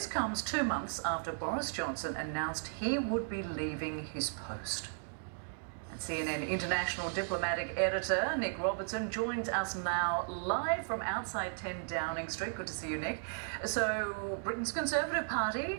comes 2 months after Boris Johnson announced he would be leaving his post. And CNN international diplomatic editor Nick Robertson joins us now live from outside 10 Downing Street. Good to see you, Nick. So, Britain's Conservative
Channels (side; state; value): left; silent; digital silence